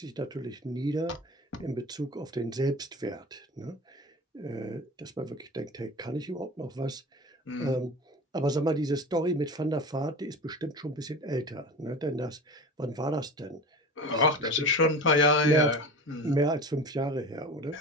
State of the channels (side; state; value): both; normal; correlation 0.34